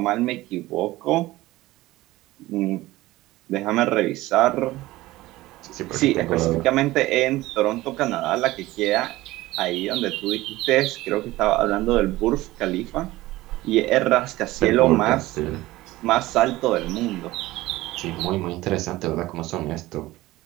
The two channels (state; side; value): quieter; left; 17.9 dB